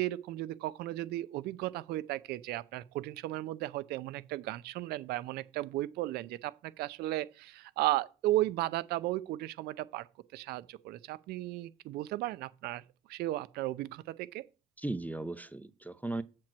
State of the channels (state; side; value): quieter; left; 13.0 dB